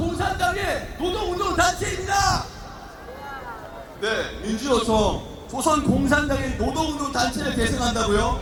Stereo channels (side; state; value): both; identical; correlation 1.00